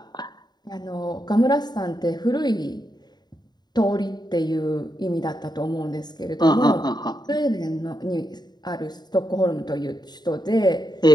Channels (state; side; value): late; right; 0.20 ms